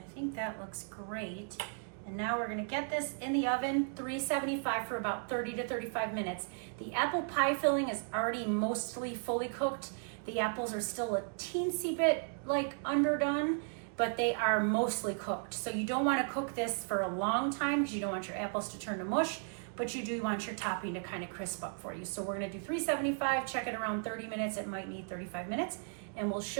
I think that looks great. And now we're gonna get this in the oven, 375 for about 30 to 35 minutes. The apple pie filling is already mostly fully cooked. The apples are still a teensy bit like underdone, but they are mostly cooked. So you don't wanna cook this for a long time because you don't want your apples to turn to mush, but you do want your topping to kind of crisp up for you. So we're gonna do 375, check it around 30 minutes. It might need 35 minutes, and we'll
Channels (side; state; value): left; silent; 54 dB below the other